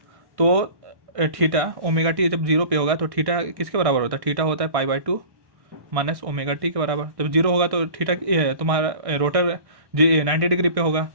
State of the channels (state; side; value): late; left; 1.6 ms